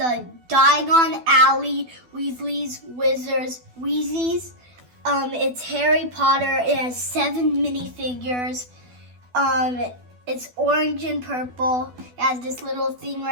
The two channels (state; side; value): late; left; 12 ms